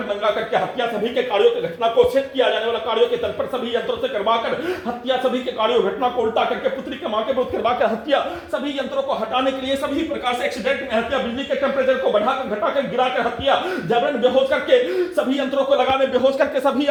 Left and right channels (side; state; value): both; identical; correlation 1.00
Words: नंगा करके हत्या, सभी के कार्यों की घटना को सेट किया जाने वाला कार्यों के तल पर सभी यंत्रों से करवाकर हत्या, सभी के कार्यों घटना को उल्टा करके पुत्री के मां के विरुद्ध करवाकर हत्या, सभी यंत्रों को हटाने के लिए सभी प्रकार से एक्सीडेंट में हत्या, बिजली के टेम्परेचर को बढ़ाकर घटाकर गिराकर हत्या, जबरन बेहोश करके सभी यंत्रों को लगाने, बेहोश करके सभी